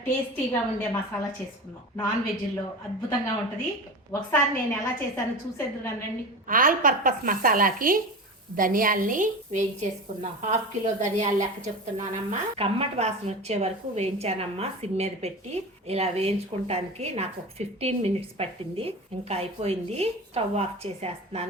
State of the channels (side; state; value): both; normal; correlation 0.29